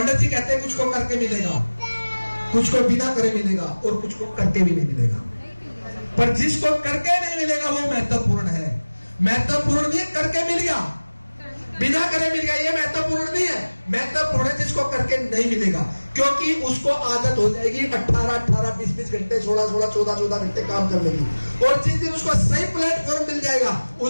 जी कहते हैं कुछ को करके मिलेगा, कुछ को बिना करे मिलेगा और कुछ को करके भी नहीं मिलेगा। पर जिसको करके नहीं मिलेगा वो महत्वपूर्ण है। महत्वपूर्ण नहीं है करके मिल गया, बिना करे मिल गया, ये महत्वपूर्ण नहीं है। महत्वपूर्ण है जिसको करके नहीं मिलेगा, क्योंकि उसको आदत हो जाएगी 18-18, 20-20 घंटे, 16-16, 14-14 घंटे काम करने की। और जिस दिन उसको सही प्लेटफॉर्म मिल जाएगा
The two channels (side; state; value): both; inverted; correlation -1.00